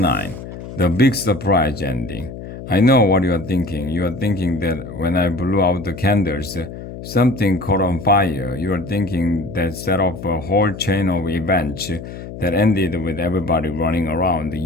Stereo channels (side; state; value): left; noise; hum, 11 dB below the sound